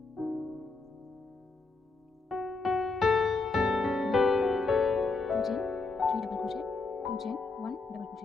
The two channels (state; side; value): quieter; right; 3.9 dB